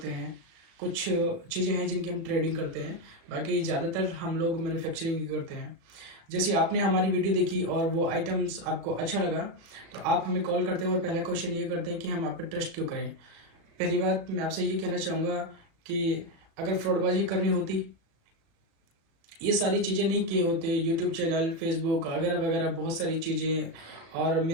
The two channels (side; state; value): left; late; 36 ms